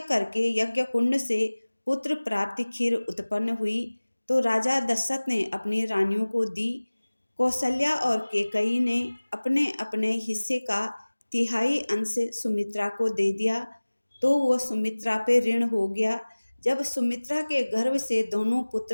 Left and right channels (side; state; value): both; inverted; correlation -1.00